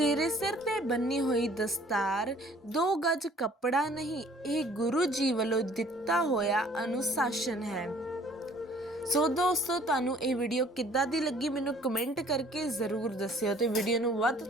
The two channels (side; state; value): both; normal; correlation 0.56